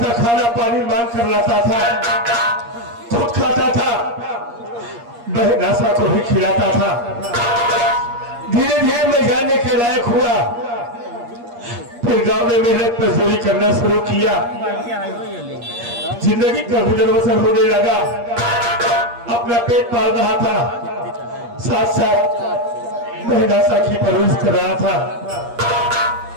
था, खाना पानी मांग कर लाता था, खुद खाता था, बहन आशा को भी खिलाता था। धीरे धीरे मैं जानने के लायक हुआ, फिर गांव में मेहनत मजदूरी करना शुरू किया। जिंदगी का गुजर बसर होने लगा, अपना पेट पाल रहा था, साथ साथ बहन आशा की परवरिश कर रहा था।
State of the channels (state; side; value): late; left; 8.5 ms